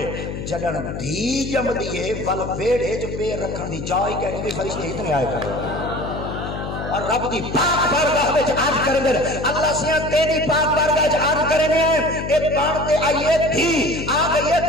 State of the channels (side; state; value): left; noise; hum, 6 dB below the sound